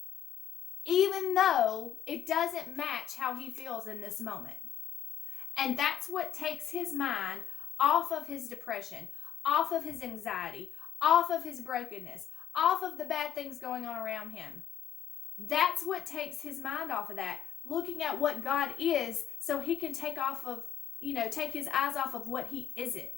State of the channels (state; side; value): quieter; right; 10.0 dB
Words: even though it doesn't match how he feels in this moment. And that's what takes his mind off of his depression, off of his anxiety, off of his brokenness, off of the bad things going on around him. That's what takes his mind off of that, looking at what God is, so he can take his eyes off of what he